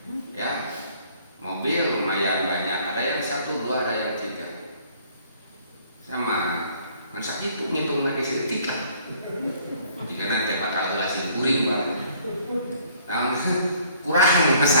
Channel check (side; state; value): both; inverted; correlation -0.59